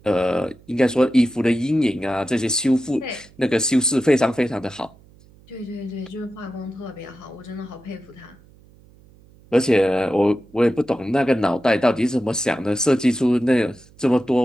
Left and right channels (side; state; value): right; noise; hum, 27 dB below the sound